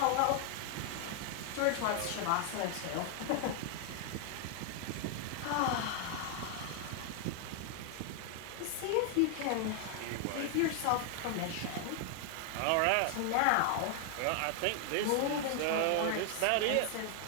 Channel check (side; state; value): both; different; correlation 0.00